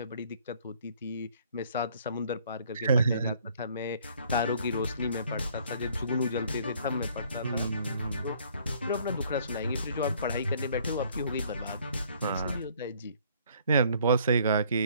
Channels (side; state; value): both; inverted; correlation -0.60